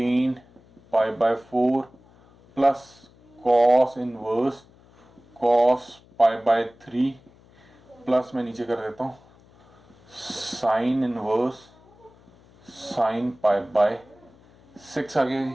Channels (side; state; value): left; noise; hum, 28 dB below the sound